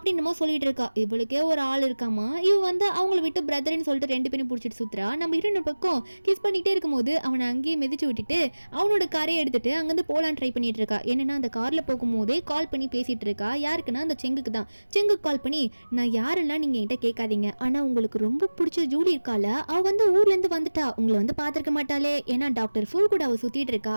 மாதிரி சொல்லிட்டு இருக்கா. இவளுக்கே ஒரு ஆள் இருக்காமா, இவ வந்து அவங்கள விட்டு பிரதர்ன்னு சொல்லிட்டு ரெண்டு பேரும் பிடிச்சிட்டு சுத்துறா. நம்ம ஹீரோன் பக்கம் கிஸ் பண்ணிக்கிட்டே இருக்கும்போது அவனை அங்கேயே மிதிச்சு விட்டுட்டு அவனோட காரையை எடுத்துட்டு அங்கேருந்து போலான்னு ட்ரை பண்ணிட்டு இருக்கா. என்னன்னா அந்த கார்ல போகும்போதே கால் பண்ணி பேசிட்டு இருக்கா. யாருக்குன்னா அந்த செங்குக்கு தான். செங்குக்கு கால் பண்ணி நான் யாரெல்லாம் நீங்க என்கிட்ட கேட்காதீங்க, ஆனா உங்களுக்கு ரொம்ப பிடிச்ச ஜூலி இருக்கால, அவ வந்து ஊர்ல இருந்து வந்துட்டா, உங்களை வந்து பாத்திருக்க மாட்டாளே, ஏன்னா டாக்டர் ஃபூ கூட அவ சுத்திட்டு இருக்கா,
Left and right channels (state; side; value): inverted; both; correlation -1.00